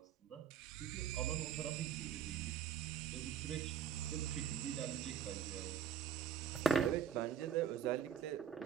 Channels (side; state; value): left; quieter; 8.3 dB